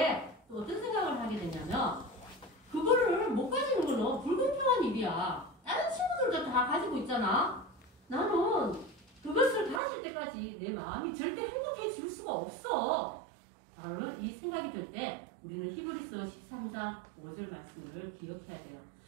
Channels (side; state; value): left; drops out; at 9.8 s